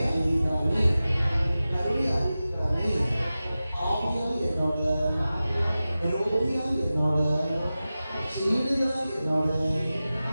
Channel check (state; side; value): inverted; both; correlation -0.95